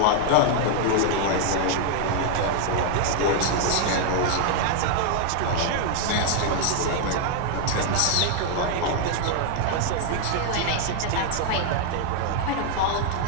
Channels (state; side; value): different; both; correlation 0.00